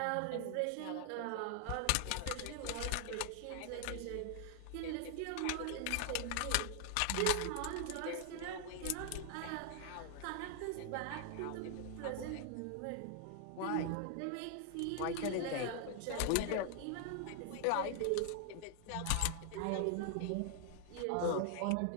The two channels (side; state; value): both; different; correlation 0.00